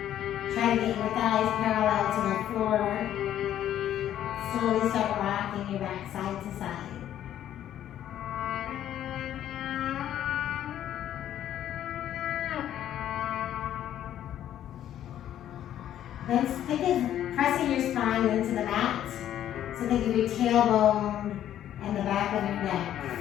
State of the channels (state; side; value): quieter; right; 11.3 dB